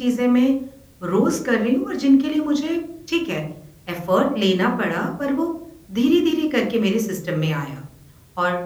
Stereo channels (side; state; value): both; identical; correlation 1.00